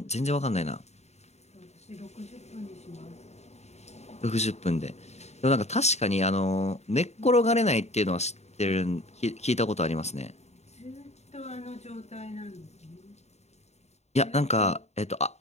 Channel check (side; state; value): right; late; 0.32 ms